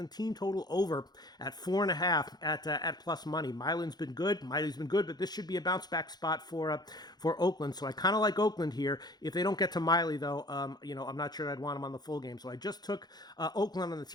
team total over at 4.5 at plus money. Miley's been good, but this should be a bounce back spot for Oakland. So I kind of like Oakland here. If they don't get to Miley, though, I'm not sure I'd want him on the full game. So I just took Oakland on the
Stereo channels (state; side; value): late; right; 0.20 ms